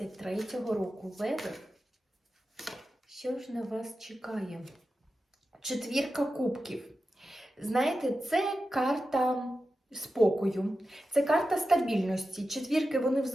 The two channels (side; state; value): both; normal; correlation 0.92